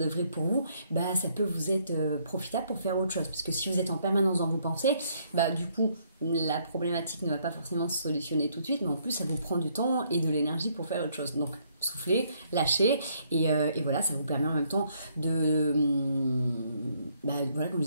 pour vous, ça peut vous être profitable pour faire autre chose. Parce que si vous êtes en permanence dans vos pensées, du coup, la problématique ne va pas forcément se solutionner tout de suite, mais en plus, ça vous prend du temps et de l'énergie pour faire autre chose. Donc, soufflez, lâchez, et voilà, ça vous permet en même temps de, voilà, comme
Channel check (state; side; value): inverted; both; correlation -0.69